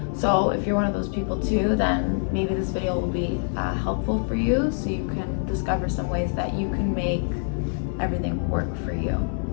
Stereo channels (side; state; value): right; silent; 62 dB below the other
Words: So if you're one of those people too, then maybe this video will be helpful for you, so you can discover some ways that you can make everything work for you.